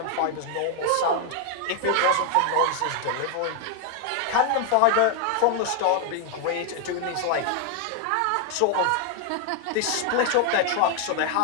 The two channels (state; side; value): different; both; correlation 0.00